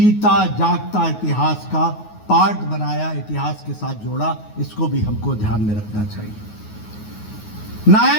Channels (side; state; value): right; late; 9.4 ms